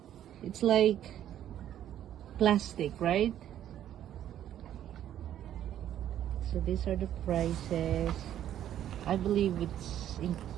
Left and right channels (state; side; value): quieter; left; 11.2 dB